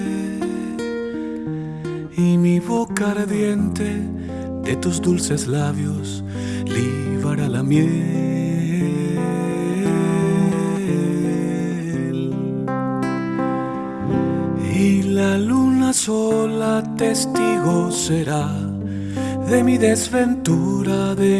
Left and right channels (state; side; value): noise; right; hum, 28 dB below the sound